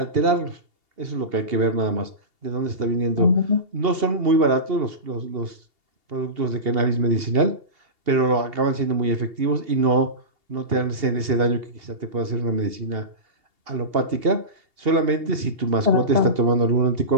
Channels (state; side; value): late; left; 2.8 ms